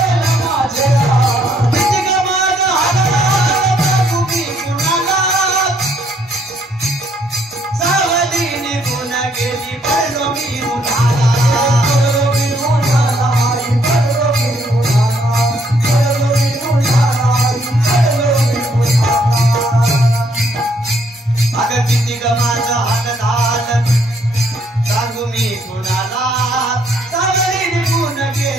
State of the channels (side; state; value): both; normal; correlation 0.69